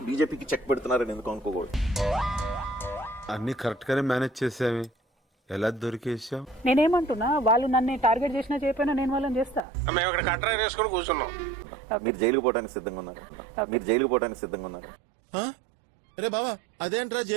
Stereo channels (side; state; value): left; drops out; at 9.7 s